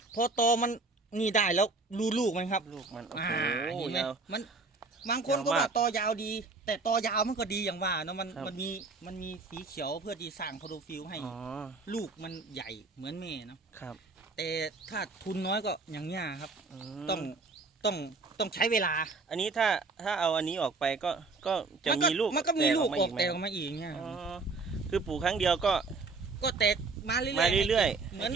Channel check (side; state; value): left; quieter; 3.9 dB